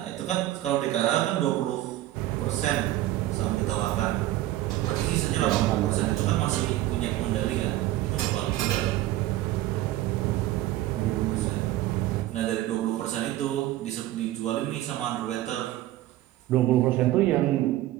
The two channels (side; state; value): left; quieter; 15.0 dB